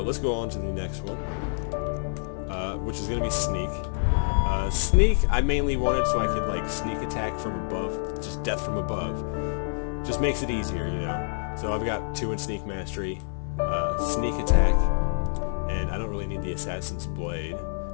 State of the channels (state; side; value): silent; right; digital silence